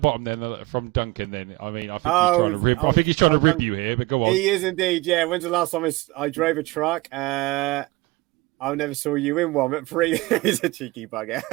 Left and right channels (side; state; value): left; quieter; 22.1 dB